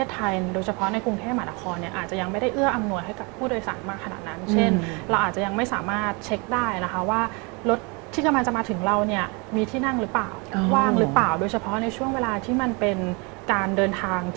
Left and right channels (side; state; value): left; quieter; 30.3 dB